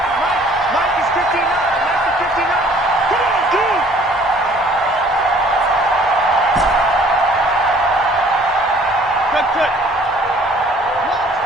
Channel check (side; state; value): both; normal; correlation 0.55